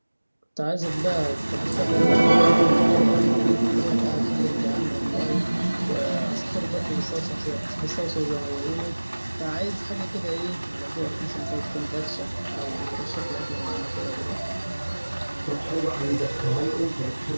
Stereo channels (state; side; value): inverted; both; correlation -1.00